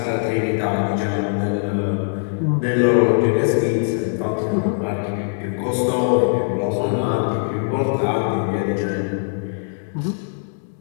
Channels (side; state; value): right; silent; digital silence